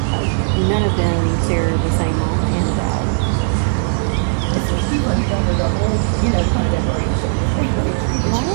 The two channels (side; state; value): left; silent; digital silence